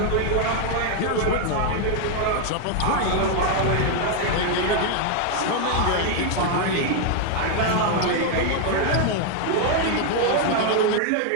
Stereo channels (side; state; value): both; different; correlation 0.01